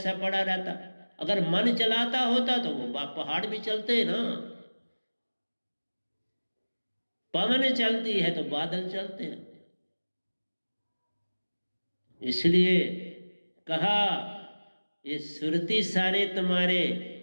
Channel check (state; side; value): inverted; both; correlation -1.00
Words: पड़ा रहता। अगर मन चलाता होता तो वो पहाड़ भी चलते ना। पवन चलती है तो बादल चलते हैं। इसलिए कहा ये सुरती सारे तुम्हारे